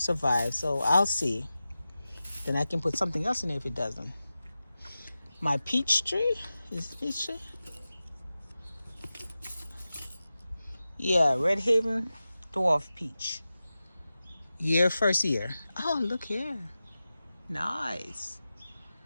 So I'll see. Then I can put something else in there if it doesn't. My peach tree. Is it peach tree? Yeah, Red Haven Dwarf Peach. First year. Oh, look here. Nice.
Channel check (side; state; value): both; inverted; correlation -0.94